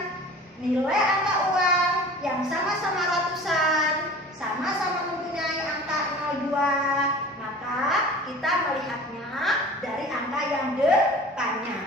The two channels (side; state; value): both; normal; correlation 0.42